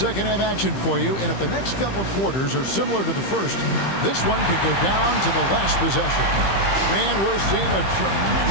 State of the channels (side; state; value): right; late; 15 ms